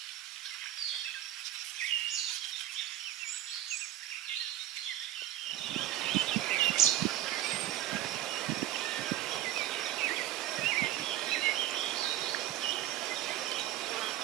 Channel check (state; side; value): quieter; left; 13.4 dB